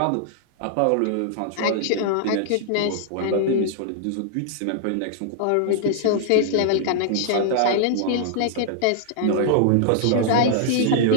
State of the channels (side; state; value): both; different; correlation -0.01